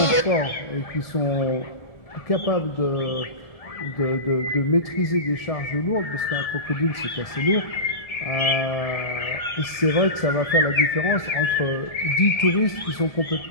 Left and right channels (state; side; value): late; right; 1.7 ms